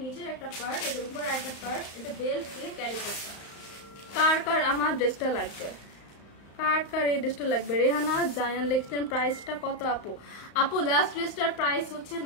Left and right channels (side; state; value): right; late; 35 ms